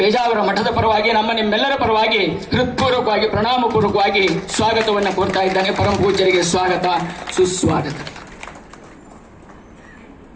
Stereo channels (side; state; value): both; identical; correlation 1.00